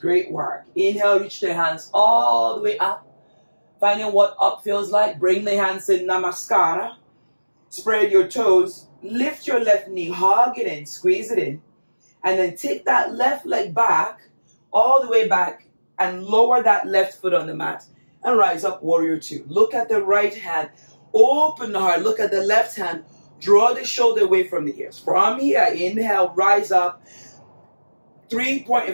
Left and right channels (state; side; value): inverted; both; correlation -1.00